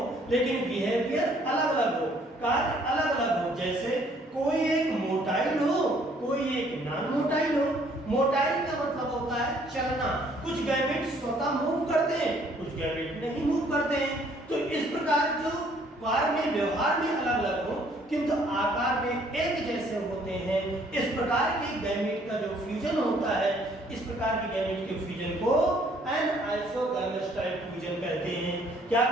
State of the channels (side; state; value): both; normal; correlation 0.62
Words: लेकिन बिहेवियर अलग अलग हो, कार्य अलग अलग हो, जैसे कोई एक मोटाइल हो, कोई एक नॉन मोटाइल हो। मोटाइल का मतलब होता है चलना, कुछ गैमेट स्वतः मूव करते हैं, कुछ गैमेट नहीं मूव करते हैं। तो इस प्रकार जो कार्य में, व्यवहार में अलग अलग हो किंतु आकार में एक जैसे होते हैं, इस प्रकार के गैमेट का जो फ्यूजन होता है, इस प्रकार के गैमेट के फ्यूजन को एन-आइसोगैमस टाइप फ्यूजन कहते हैं। क्या